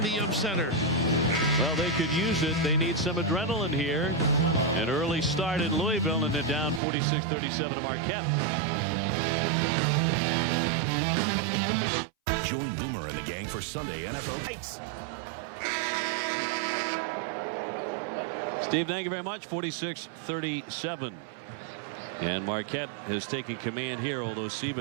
the Yum Center. Well, they could use it. They need some adrenaline here. An early start in Louisville, and they're down 46-37 to Marquette. Join Boomer and the gang for Sunday NFL Heights. Steve, thank you very much. 46-37. And Marquette has taken command here, although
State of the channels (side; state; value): left; drops out; at 6.8 s